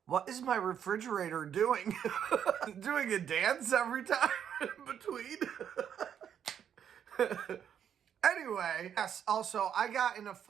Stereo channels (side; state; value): left; quieter; 8.8 dB